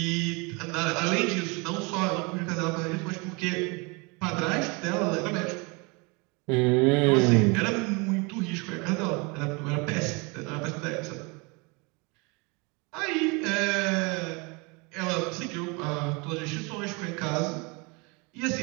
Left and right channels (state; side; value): quieter; left; 28.9 dB